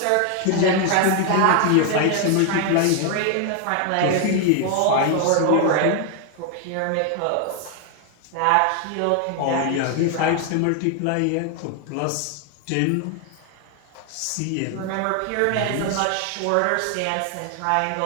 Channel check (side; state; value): both; different; correlation 0.00